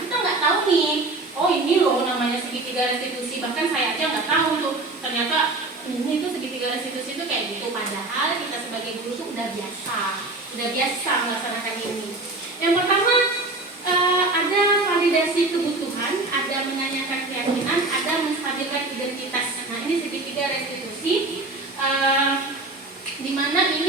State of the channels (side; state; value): left; quieter; 3.1 dB